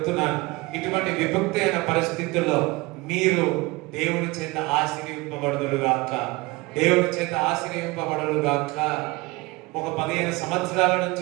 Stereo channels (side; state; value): left; quieter; 23.1 dB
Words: ఇటువంటి విభక్తి అయిన పరిస్థితుల్లో మీరు దేవుడి చేత ఆశీర్వింపబడుదురుగాక. ఒక 15 సంవత్సరాల నుంచి